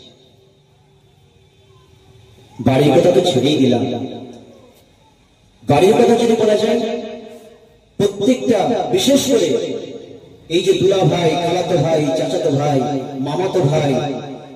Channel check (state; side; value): identical; both; correlation 1.00